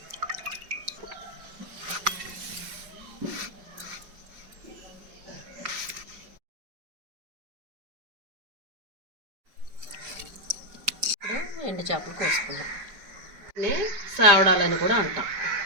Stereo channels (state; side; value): late; left; 5.1 ms